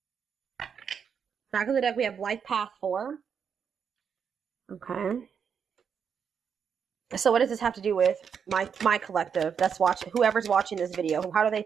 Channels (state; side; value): quieter; left; 7.0 dB